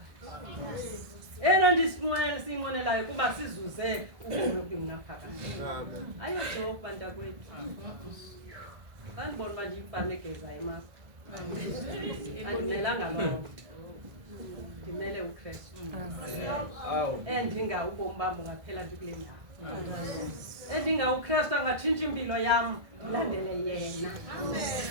Eyona nto siyinqwenelayo kuba sizuze ubomi obungaphakathi. Ayojoka bantakwethu. Bandibona uba ndiyimfana egezayo emapha. Andimelanga loo nto. Ndimele uKristu. Endinga ubomi bam bungaphela nje kule ndawo. Endinga uKristu angatshintsha impilo yam ndilandele yena.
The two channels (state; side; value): late; left; 1.7 ms